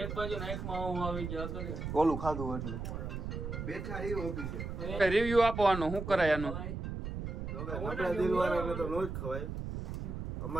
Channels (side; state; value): right; noise; rumble, 5 dB below the sound